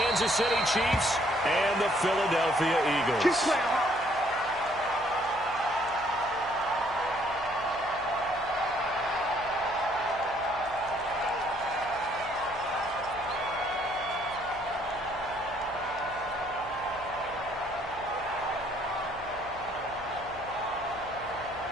City Chiefs and the Philadelphia Eagles.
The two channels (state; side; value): noise; right; hum, 18 dB below the sound